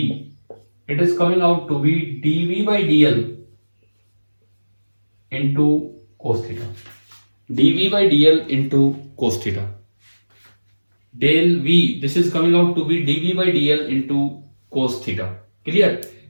it is coming out to be dv by dl into cos theta, dv by dl into cos theta. Del v this is coming out to be dv by dl into cos theta. Clear?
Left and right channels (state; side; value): inverted; both; correlation -1.00